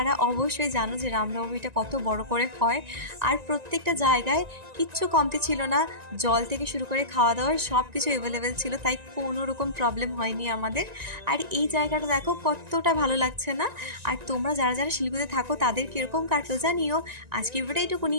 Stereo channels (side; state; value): left; late; 1.9 ms